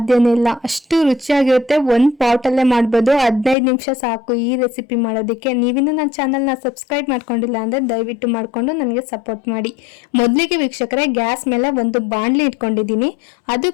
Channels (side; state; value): right; drops out; at 3.6 s